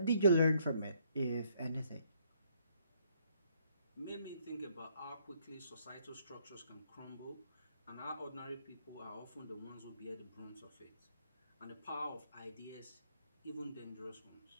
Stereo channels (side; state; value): both; inverted; correlation -0.68